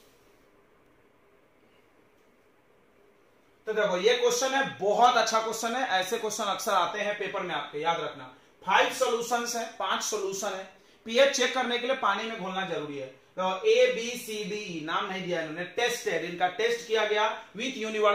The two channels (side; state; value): both; identical; correlation 1.00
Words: तो देखो ये क्वेश्चन है, बहुत अच्छा क्वेश्चन है। ऐसे क्वेश्चन अक्सर आते हैं पेपर में आपके, याद रखना। 5 सॉल्यूशंस हैं, 5 सॉल्यूशन है। पीएच चेक करने के लिए पानी में घोलना जरूरी है। तो ए बी सी डी ई नाम नहीं दिया इन्होंने, टेस्टेड, इनका टेस्ट किया गया विथ